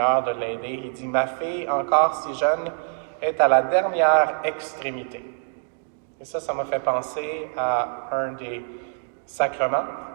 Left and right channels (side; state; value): left; silent; digital silence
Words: de l'aider. Il dit, « Ma fille, encore si jeune, est à la dernière extrémité. » Et ça m'a fait penser à un des sacrements,